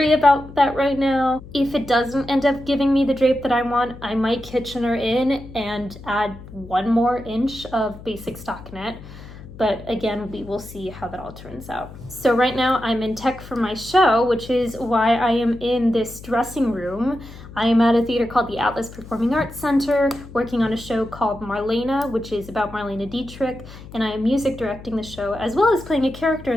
about that right now. If it doesn't end up giving me the drape that I want, I might Kitchener in and add 1 more inch of basic stockinette. But again, we will see how that all turns out. So right now I'm in tech for my show, which is why I am in this dressing room. I am at a theater called the Atlas Performing Arts Center, working on a show called Marlena, which is about Marlena Dietrich, and I am music directing the show as well as playing a character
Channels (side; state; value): left; noise; hum, 16 dB below the sound